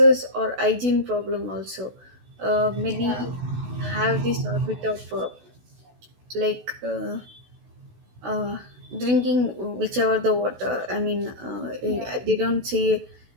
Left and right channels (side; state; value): left; late; 16 ms